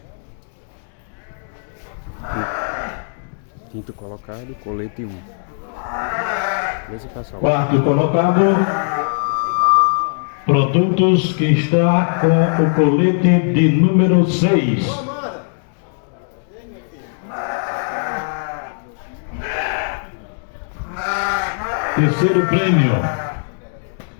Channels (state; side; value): silent; right; digital silence